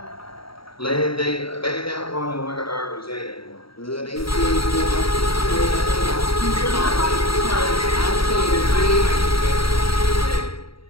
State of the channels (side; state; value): right; late; 0.75 ms